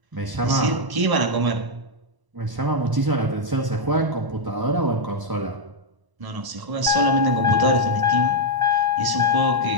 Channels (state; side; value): late; left; 1.0 ms